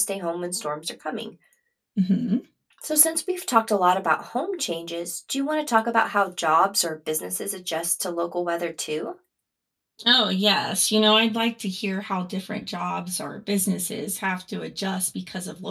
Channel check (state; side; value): identical; both; correlation 1.00